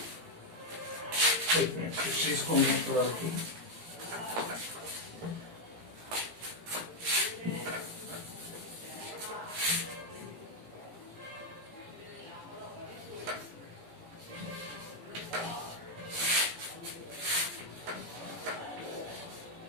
एक मिनट से इसको मैं थोड़ा रखूं।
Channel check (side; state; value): left; late; 18 ms